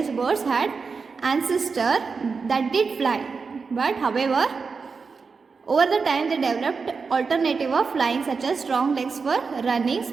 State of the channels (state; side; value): quieter; left; 5.0 dB